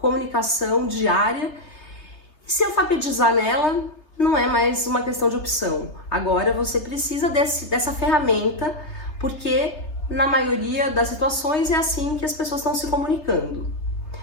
comunicação diária. Se alfabetizar nela não é mais uma questão de opção. Agora você precisa dessa ferramenta, porque na maioria das situações é assim que as pessoas estão se comunicando.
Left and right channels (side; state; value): right; late; 3.3 ms